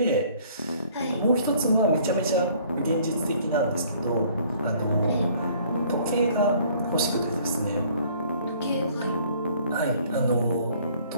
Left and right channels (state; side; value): inverted; both; correlation -0.57